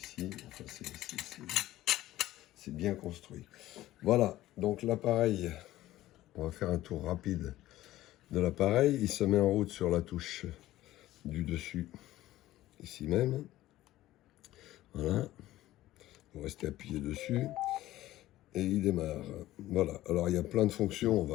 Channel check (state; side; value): quieter; right; 15.3 dB